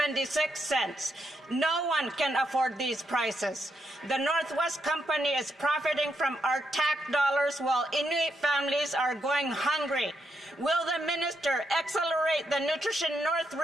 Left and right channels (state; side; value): normal; both; correlation 0.80